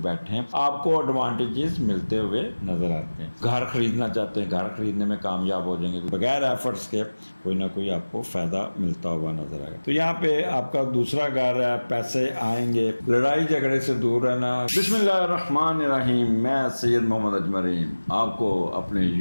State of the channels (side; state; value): both; inverted; correlation -1.00